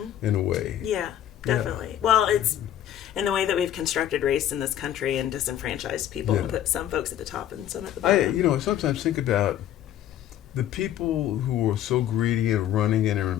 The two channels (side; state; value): right; quieter; 11.4 dB